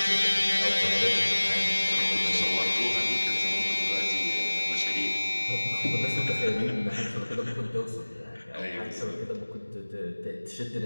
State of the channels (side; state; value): both; inverted; correlation -1.00